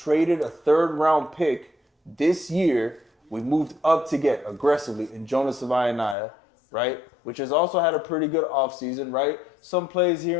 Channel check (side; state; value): right; drops out; at 6.2 s